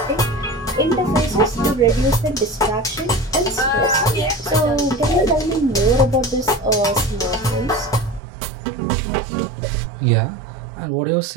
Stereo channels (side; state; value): left; drops out; at 8.2 s